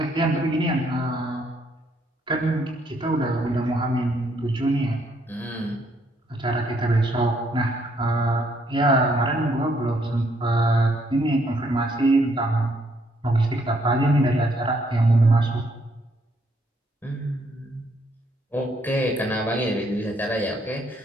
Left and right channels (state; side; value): normal; both; correlation 0.70